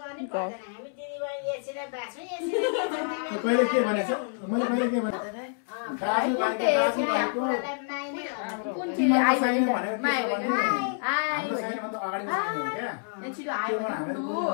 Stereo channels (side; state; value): right; silent; 59 dB below the other